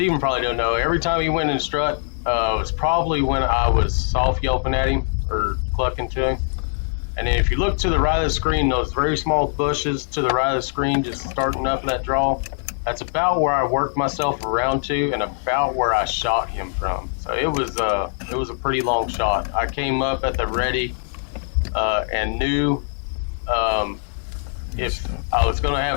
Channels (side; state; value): right; silent; digital silence